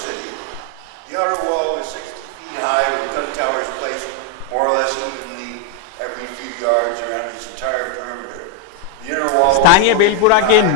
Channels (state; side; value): different; both; correlation 0.01